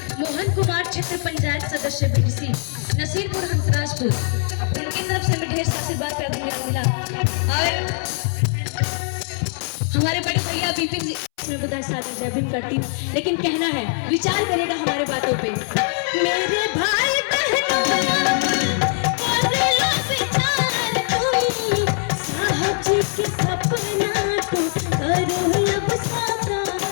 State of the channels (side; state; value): right; silent; 64 dB below the other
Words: मोहन कुमार क्षेत्र पंचायत सदस्य बीडीसी नसीरपुर हंसराजपुर, उनकी तरफ से हमें ढेर सारा आशीर्वाद प्यार दुलार मिला। और हमारे बड़े भैया विपिन जी मैं बुधाई सागर जय भीम करती हूँ। लेकिन कहना है, विचार करेगा हमारे बातों पे। मेरे भाई बहनों साहब जी के सपना को करो अब